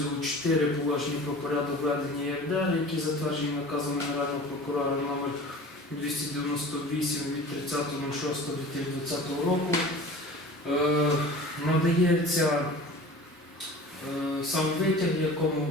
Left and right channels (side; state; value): both; normal; correlation 0.40